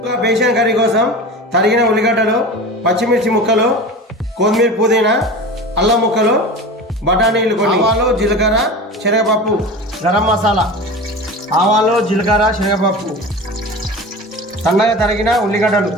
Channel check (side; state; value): both; normal; correlation 0.32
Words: బేసన్ కర్రీ కోసం తరిగిన ఉల్లిగడ్డలు, పచ్చిమిర్చి ముక్కలు, కొత్తిమీర, పుదీనా, అల్లం ముక్కలు, బఠానీలు, కొన్ని ఆవాలు, జీలకర్ర, శనగపప్పు, గరం మసాలా, ఆవాలు, జీలకర్ర, శనగపప్పు, సన్నగా తరిగిన ఉల్లిగడ్డలు,